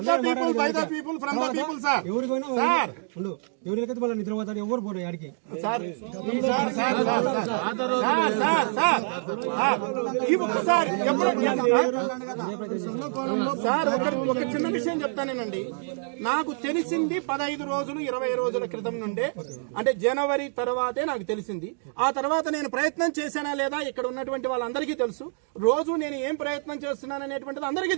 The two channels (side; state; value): left; silent; 59 dB below the other